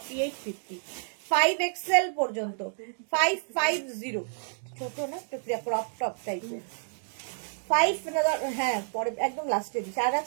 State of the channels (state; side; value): silent; left; digital silence